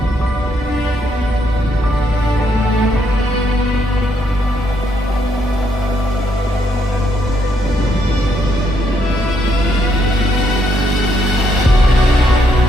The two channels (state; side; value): normal; both; correlation 0.74